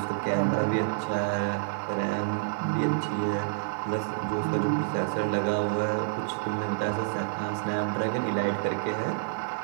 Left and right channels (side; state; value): left; silent; digital silence